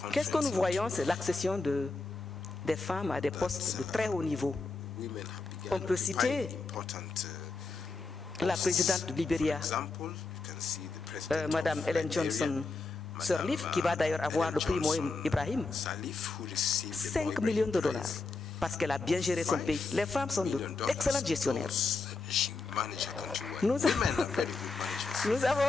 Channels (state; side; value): quieter; right; 3.8 dB